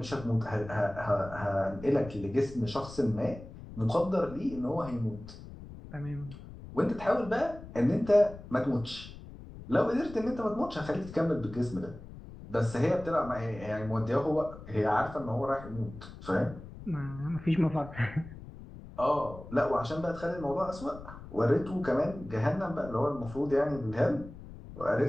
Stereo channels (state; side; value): noise; left; rumble, 15 dB below the sound